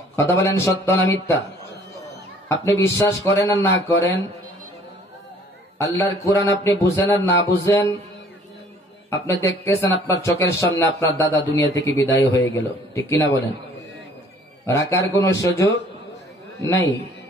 কথা বলেন, সত্য না মিথ্যা? আপনি বিশ্বাস করেন আর না করেন, আল্লাহর কোরআন আপনি বুঝেন আর না বুঝেন, আপনি দেখতেছেন আপনার চোখের সামনে আপনার দাদা দুনিয়া থেকে বিদায় হয়ে গেল, ঠিক কিনা বলেন? রাখার কোন সুযোগ নাই।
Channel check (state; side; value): normal; both; correlation 0.56